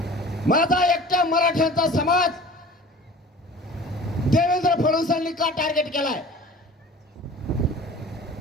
माझा एकट्या मराठ्यांचा समाज देवेंद्र फडणवीसांनी का टार्गेट केलाय?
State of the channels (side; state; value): both; normal; correlation 0.43